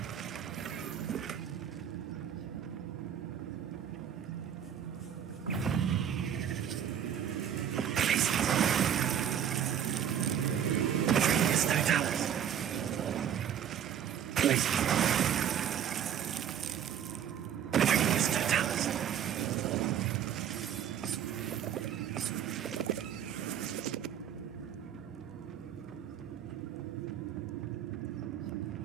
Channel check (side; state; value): left; quieter; 9.2 dB